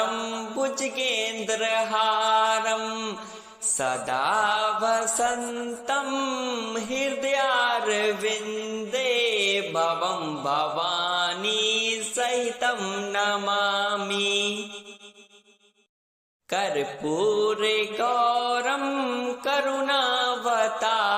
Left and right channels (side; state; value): both; identical; correlation 1.00